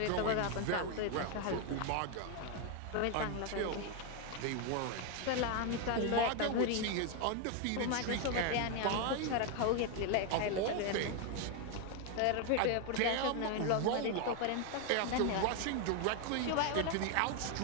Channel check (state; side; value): different; both; correlation 0.01